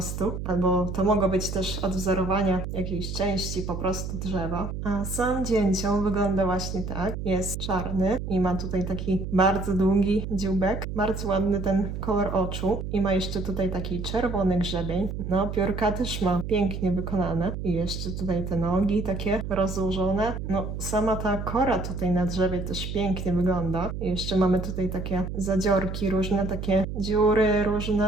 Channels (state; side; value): noise; right; hum, 5 dB below the sound